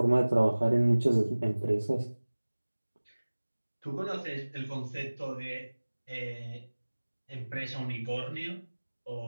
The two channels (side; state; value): both; inverted; correlation -1.00